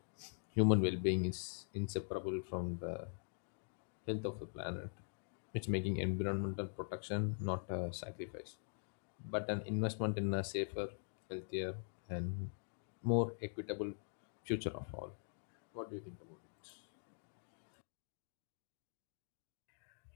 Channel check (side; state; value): right; silent; digital silence